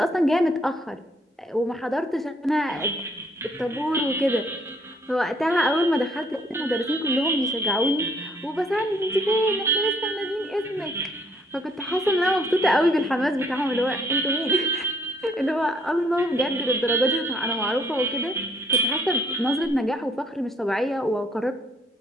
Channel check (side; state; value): both; normal; correlation 0.65